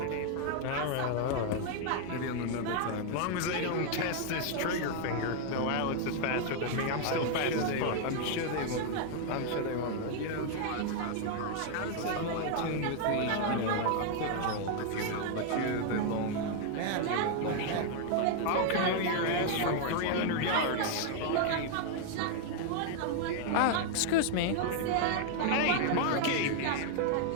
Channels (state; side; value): different; both; correlation 0.00